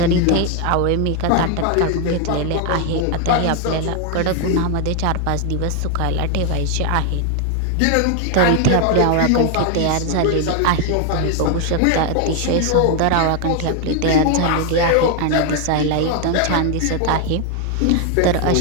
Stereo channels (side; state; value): both; different; correlation 0.00